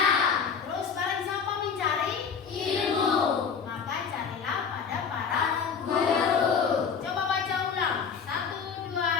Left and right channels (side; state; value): right; quieter; 6.3 dB